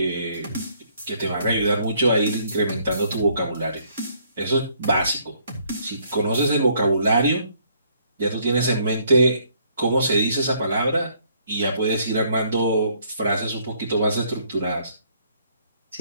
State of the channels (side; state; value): both; inverted; correlation -0.66